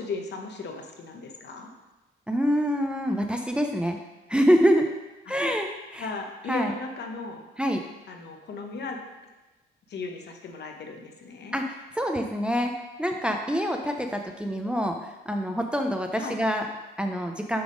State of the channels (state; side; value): normal; both; correlation 0.83